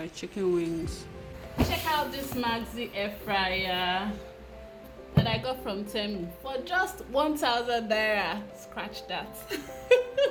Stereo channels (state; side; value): identical; both; correlation 1.00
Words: chicken wings. Check out this Maxi Air Fryer that I got from Temu for just 1,000 naira. Scratch that.